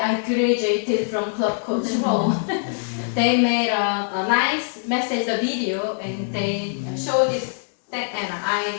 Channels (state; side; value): silent; right; digital silence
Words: graduated from club coach role. They made a nice message, a video, and they showed this thing, and